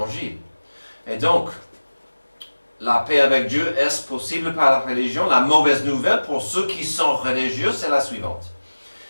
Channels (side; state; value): both; inverted; correlation -1.00